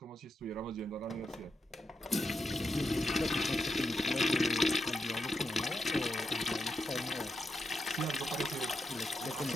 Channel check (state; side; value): normal; both; correlation 0.85